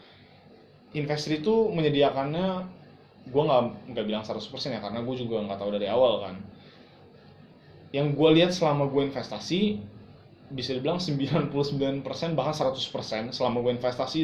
Investri itu menyediakannya, gue nggak bilang 100% ya, karena gue juga nggak tahu dari awal kan. Yang gue lihat selama gue investasi, bisa dibilang 99% bahkan 100% selama gue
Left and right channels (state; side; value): identical; both; correlation 1.00